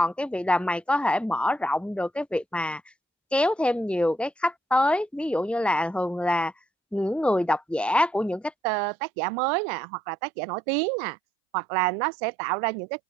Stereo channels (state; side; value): drops out; left; at 8.6 s